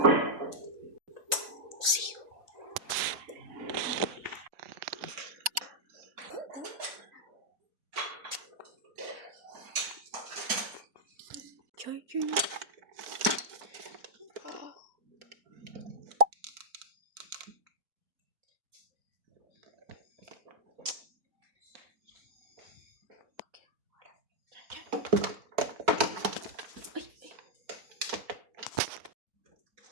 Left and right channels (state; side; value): late; left; 4.5 ms